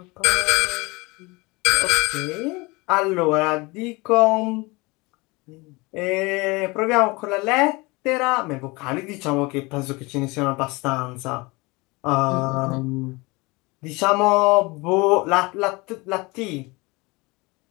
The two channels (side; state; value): right; quieter; 24.8 dB